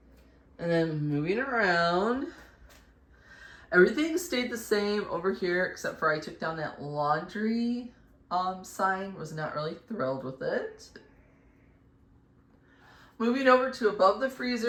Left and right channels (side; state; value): both; identical; correlation 1.00